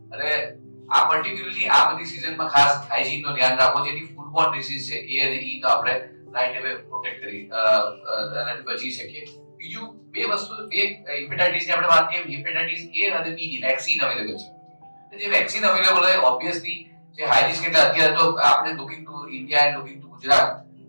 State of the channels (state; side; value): inverted; both; correlation -1.00